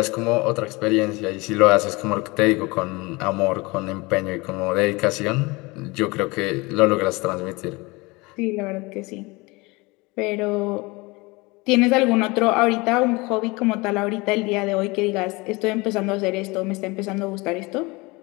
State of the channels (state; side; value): quieter; right; 24.5 dB